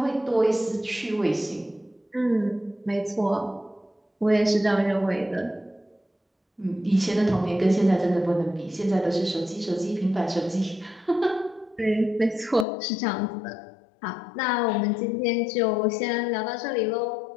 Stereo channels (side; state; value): right; drops out; at 12.7 s